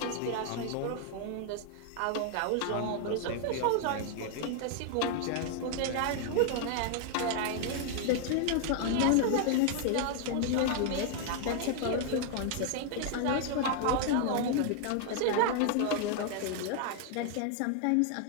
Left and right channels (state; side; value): different; both; correlation 0.00